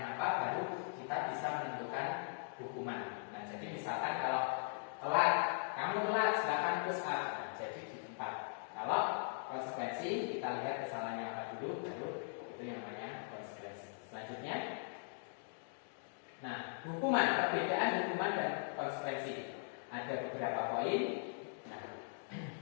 apa, baru kita bisa menentukan hukuman. Nah, jadi misalkan kalau telat, kamu telat silakan push up. Nah, jadi di tempat. Kalau konsekuensi kita lihat kesalahannya apa dulu, baru itu yang namanya konsekuensi. Selanjutnya, nah, hukuman, perbedaan hukuman dan konsekuensi. Ada beberapa poin. Nah,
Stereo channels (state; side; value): silent; right; digital silence